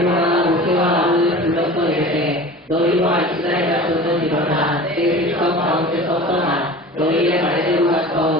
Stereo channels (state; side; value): normal; both; correlation 0.37